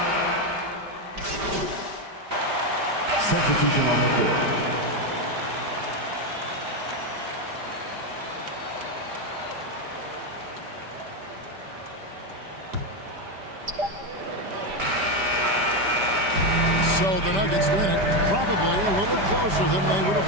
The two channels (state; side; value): late; left; 5.1 ms